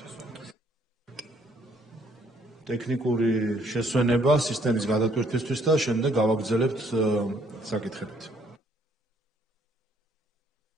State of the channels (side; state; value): both; normal; correlation 0.65